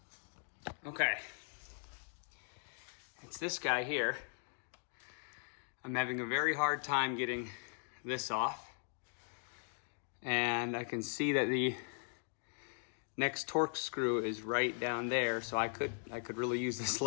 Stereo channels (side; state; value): right; silent; 52 dB below the other